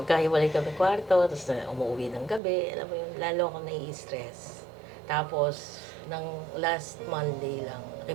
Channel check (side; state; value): left; drops out; at 2.4 s